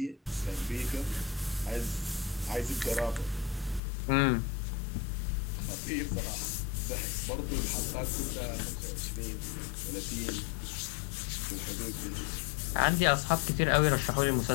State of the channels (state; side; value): drops out; right; at 3.8 s